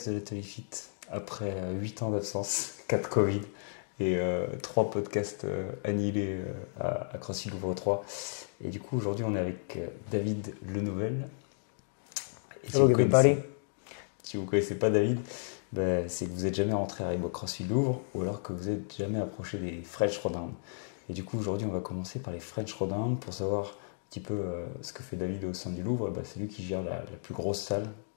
de l'Atelier Fit après 8 ans d'absence, 4 Covid et 3 podcasts annihilés à CrossFit Louvre 3. Et du coup, aujourd'hui, on est avec David Lenouvel. Et Hello, everybody. Si vous ne connaissez pas David, c'est que vous n'êtes jamais rentré à Reebok CrossFit Louvre ou alors que vous n'êtes jamais approché des French Throwdown. Et du coup, aujourd'hui, on va commencer par les French Throwdown pour savoir un petit peu ce que fait David au sein du Louvre. C'est lui qui gère la plus grosse salle,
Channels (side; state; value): right; silent; digital silence